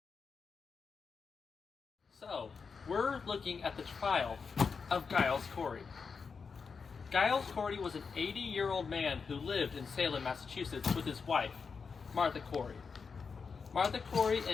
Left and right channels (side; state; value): right; quieter; 5.4 dB